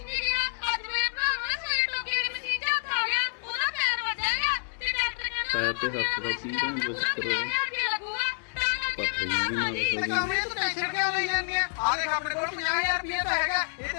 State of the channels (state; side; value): silent; right; digital silence